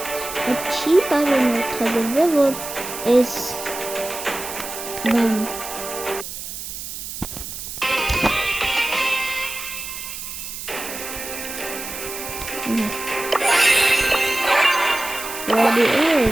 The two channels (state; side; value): noise; right; hiss, 8 dB below the sound